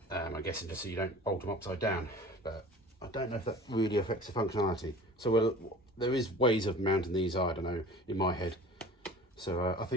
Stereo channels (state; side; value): normal; both; correlation 0.42